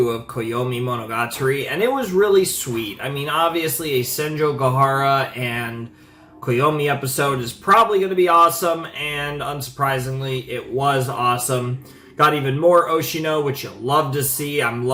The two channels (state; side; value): identical; both; correlation 1.00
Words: of Koyomimonogatari, and it was really sweet. Obviously a Senjo Gahara and Koyomi episode is probably going to be awesome, and unsurprisingly, it was awesome. Got even more Oshino, which you'll love to see. I'm